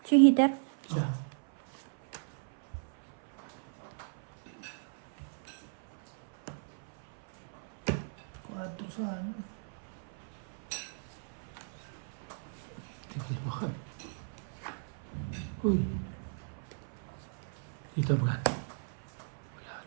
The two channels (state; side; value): silent; left; 54 dB below the other